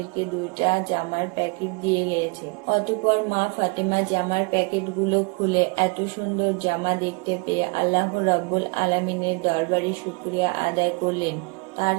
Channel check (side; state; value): left; quieter; 31.8 dB